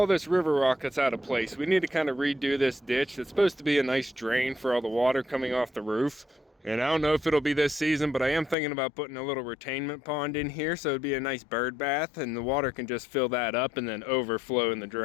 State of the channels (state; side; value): drops out; right; at 8.6 s